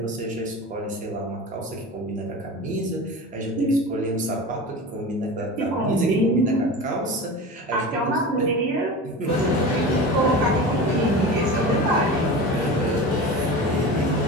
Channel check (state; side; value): normal; both; correlation 0.31